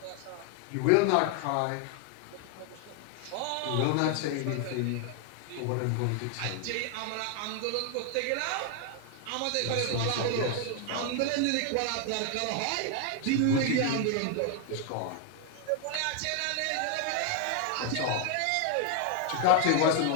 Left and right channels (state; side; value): different; both; correlation 0.00